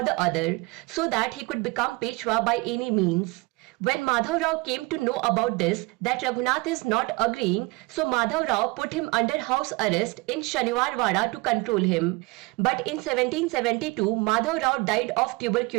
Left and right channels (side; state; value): left; quieter; 24.7 dB